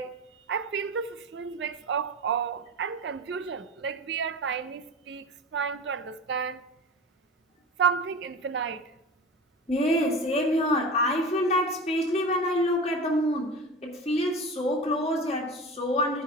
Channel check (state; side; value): normal; both; correlation 0.31